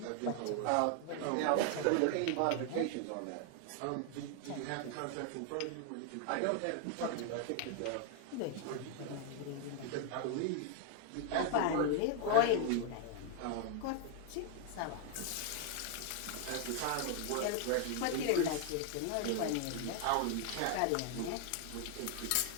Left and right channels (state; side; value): different; both; correlation 0.00